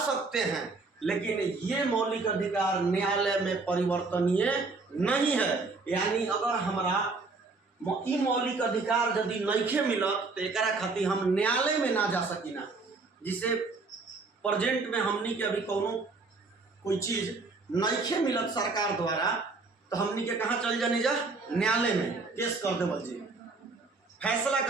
सकते हैं लेकिन ये मौलिक अधिकार न्यायालय में परिवर्तनीय नहीं है। यानी अगर हमारा ई मौलिक अधिकार यदि नइखे मिलत तो एकरा खातिर हम न्यायालय में ना जा सकी ना। जिसे प्रेजेंट में हमनी के अभी कोई चीज नइखे मिलत सरकार द्वारा तो हमनी के कहाँ चल जाने जा न्यायालय में केस कर देवल जी फैसला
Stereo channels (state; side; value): quieter; left; 3.8 dB